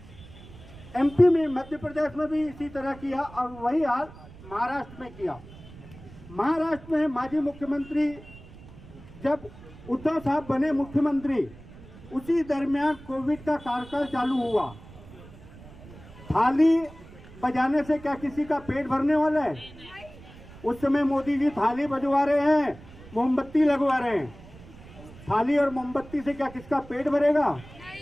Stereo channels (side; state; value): right; noise; rumble, 19 dB below the sound